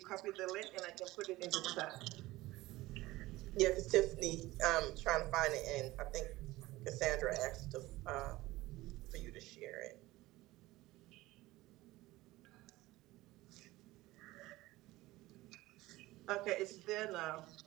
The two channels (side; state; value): left; quieter; 18.4 dB